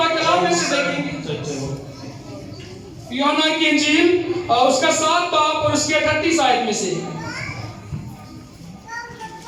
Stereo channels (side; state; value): both; identical; correlation 1.00